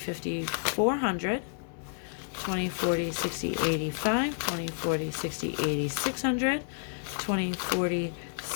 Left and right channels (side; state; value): right; silent; 58 dB below the other